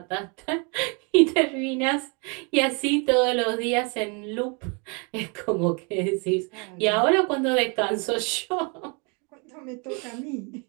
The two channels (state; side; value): quieter; left; 34.2 dB